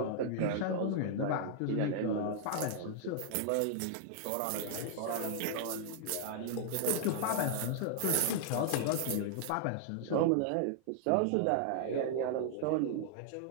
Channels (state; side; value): different; both; correlation -0.01